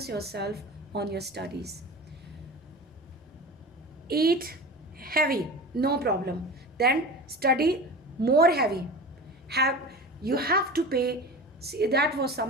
yourself on your studies. Eat heavy, no problem. Then study more heavy. You have to pay. See, that was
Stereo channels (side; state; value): both; normal; correlation 0.32